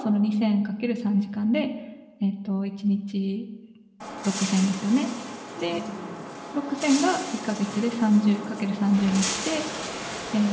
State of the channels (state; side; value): identical; both; correlation 1.00